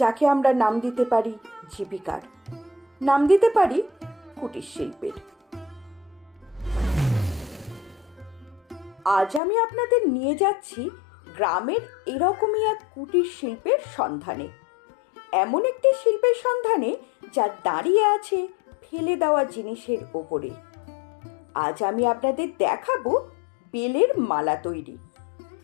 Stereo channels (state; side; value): drops out; right; at 9.4 s